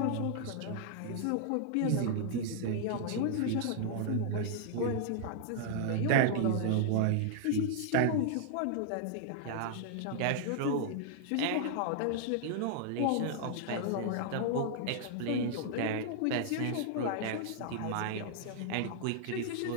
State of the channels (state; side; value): different; both; correlation -0.01